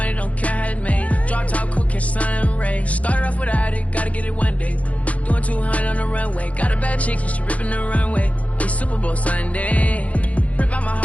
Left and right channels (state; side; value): late; right; 0.066 ms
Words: don't care how it's made. Drop top, cool, catch sun rays. Started off without it, gotta get it one day. Doing 200 on the runway. Got a bad chick, and she ripping the runway. It's Super Bowl Sunday. Rip out my